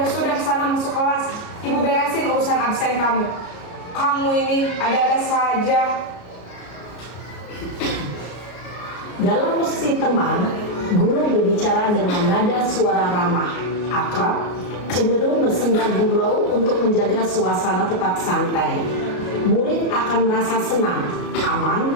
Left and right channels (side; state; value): right; late; 33 ms